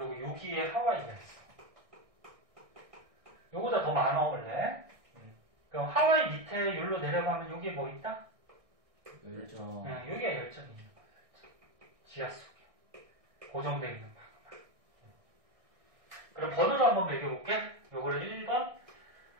여기에 하와이가 있어. 요거보다 더 많아 원래. 그럼 하와이 밑에 여기로 내려가면 여기에 뭐 있다? 열전. 여기에 열전이 있는 거야. 지하 속에 고정되어 있는 방만. 그럼 번호로 한번 매겨볼게. 요거를 1번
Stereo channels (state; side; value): late; left; 1.6 ms